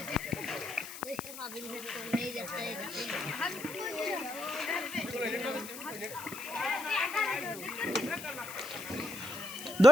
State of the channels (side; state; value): left; noise; hiss, 11 dB below the sound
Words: দেখে ভাবিন তো নেই যাচ্ছে